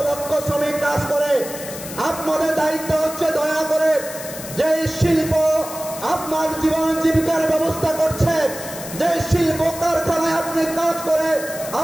লক্ষ শ্রমিক কাজ করে। আপনাদের দায়িত্ব হচ্ছে দয়া করে যে শিল্প আপনার জীবন জীবিকার ব্যবস্থা করছে, যে শিল্প কারখানায় আপনি কাজ করে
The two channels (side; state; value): left; noise; hiss, 11 dB below the sound